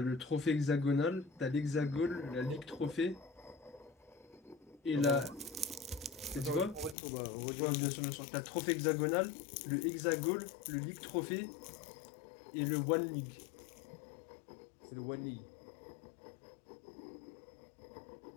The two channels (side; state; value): right; drops out; at 7.0 s